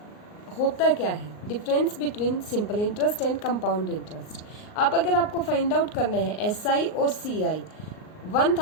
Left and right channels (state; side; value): late; right; 38 ms